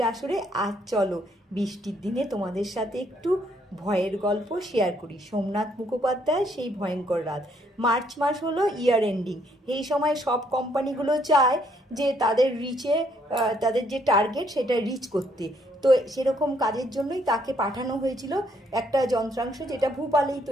আসরে। আজ চলো বৃষ্টির দিনে তোমাদের সাথে একটু ভয়ের গল্প শেয়ার করি। সোমনাথ মুখোপাধ্যায় সেই ভয়ঙ্কর রাত। মার্চ মাস হলো ইয়ার এন্ডিং। এই সময় সব কোম্পানিগুলো চায় যে তাদের তাদের যে টার্গেট সেটা রিচ করতে। তো সেরকম কাজের জন্যই তাকে পাঠানো হয়েছিল একটা যন্ত্রাংশ যেটা ভূপালেই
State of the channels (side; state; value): both; normal; correlation 0.69